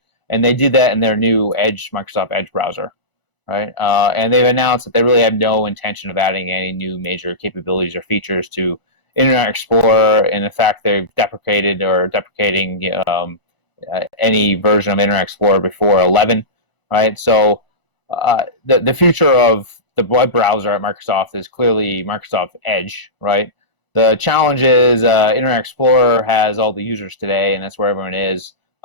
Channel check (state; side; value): late; right; 1.0 ms